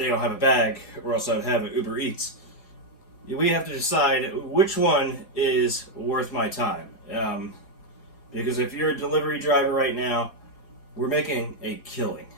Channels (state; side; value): late; right; 4.9 ms